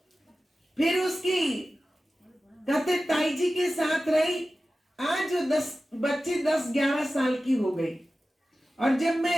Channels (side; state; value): both; normal; correlation 0.95